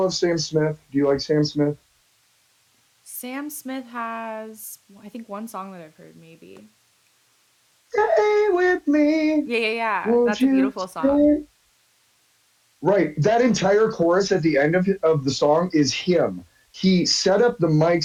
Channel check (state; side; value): identical; both; correlation 1.00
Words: Sam Smith? Do you like Sam Smith? Sam Smith has, I think, one song that I've heard, maybe. Stay with me, Yeah, yeah, yeah. won't That's a you beautiful song. stay? Right. That entire chorus at the end of the song is him. He set up the